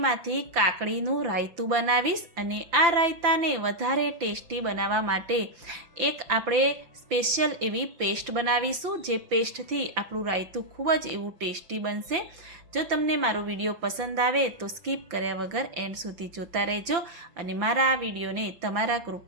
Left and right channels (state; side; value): late; left; 5.9 ms